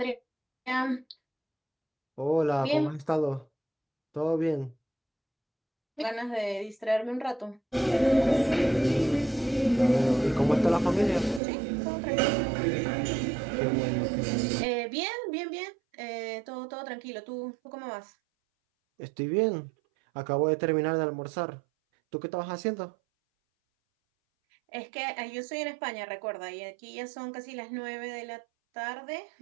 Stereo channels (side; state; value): left; drops out; at 11.4 s